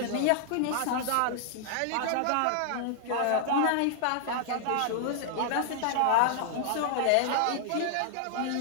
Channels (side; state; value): both; different; correlation -0.01